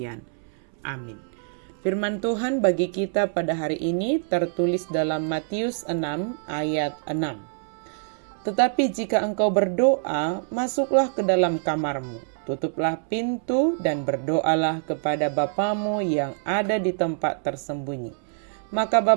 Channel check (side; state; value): left; silent; 62 dB below the other